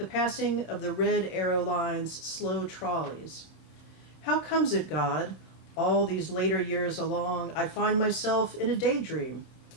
passing of the red arrow lines' slow trolleys. How comes it, God, all these later years along, I find myself in a daydream?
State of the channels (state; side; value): late; right; 26 ms